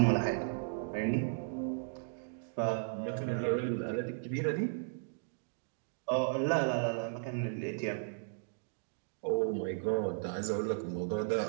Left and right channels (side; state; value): left; silent; digital silence